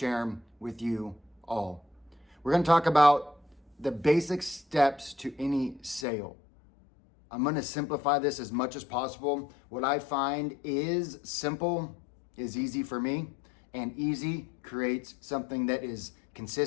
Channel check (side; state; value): right; drops out; at 6.1 s